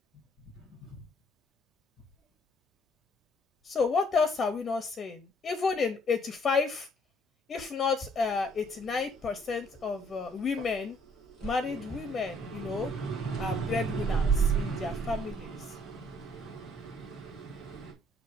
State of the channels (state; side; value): normal; both; correlation 0.64